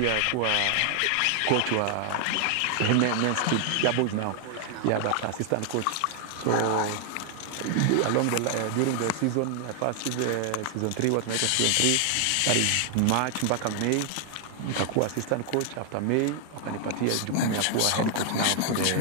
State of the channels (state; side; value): different; both; correlation 0.00